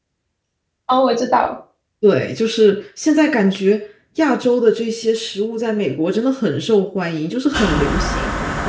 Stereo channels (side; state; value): both; identical; correlation 1.00